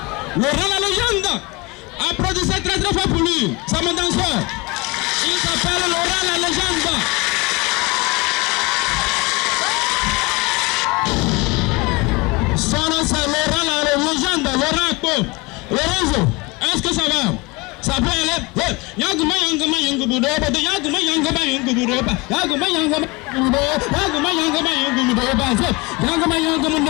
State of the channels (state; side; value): quieter; right; 25.2 dB